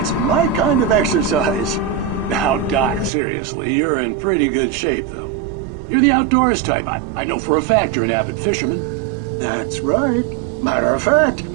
my kind of exercise. Now, Doc, seriously, you're in pretty good shape, though. You're the outdoors type. I know for a fact you're an avid fisherman. That's right. Matter of fact,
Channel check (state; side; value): drops out; left; at 3.1 s